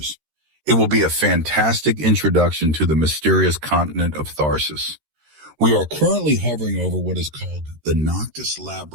It will be a fantastic introduction to the mysterious continent of Tharsis. We are currently hovering over what is called the Noctis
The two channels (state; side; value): late; left; 13 ms